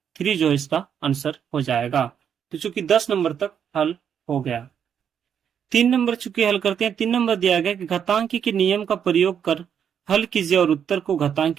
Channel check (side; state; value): left; quieter; 8.2 dB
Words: 3 जो इसका आंसर हो जाएगा। तो चूंकि 10 नंबर तक हल हो गया। 3 नंबर चूंकि हल करते हैं। 3 नंबर दिया गया कि घातांकी के नियम का प्रयोग कर हल कीजिए और उत्तर को घातांक